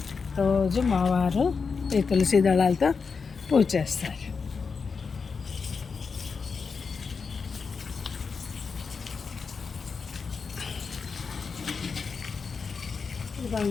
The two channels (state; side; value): quieter; right; 5.3 dB